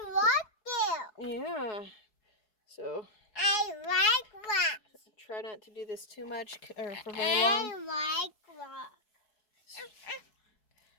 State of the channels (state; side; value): late; right; 4.7 ms